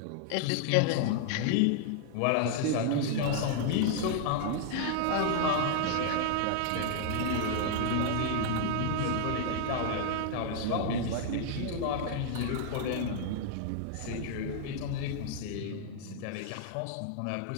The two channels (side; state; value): both; different; correlation -0.01